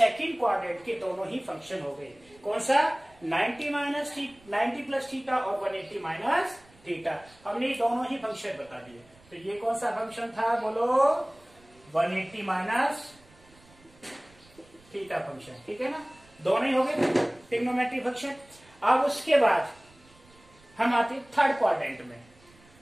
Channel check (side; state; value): right; noise; rumble, 28 dB below the sound